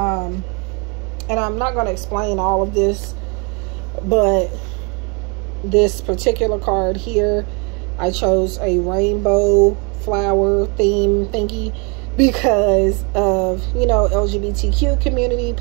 And I'm not going to explain all of this, but this particular card here, I chose a rainbow flower theme thingy because of, you know, LGBTQ community,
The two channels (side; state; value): left; quieter; 33.0 dB